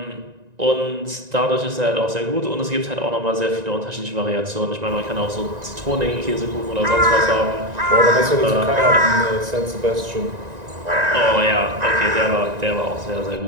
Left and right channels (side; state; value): left; late; 1.9 ms